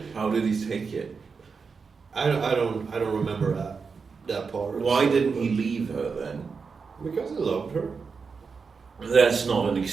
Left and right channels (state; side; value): quieter; left; 5.2 dB